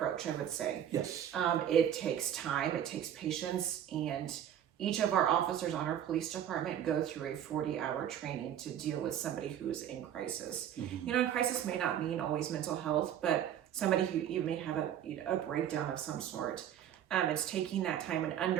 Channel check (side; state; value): left; quieter; 10.2 dB